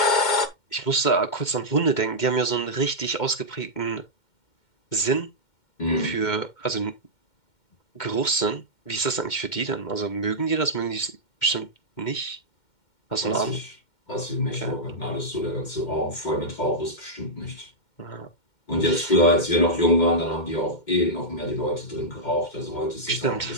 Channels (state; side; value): late; right; 2.1 ms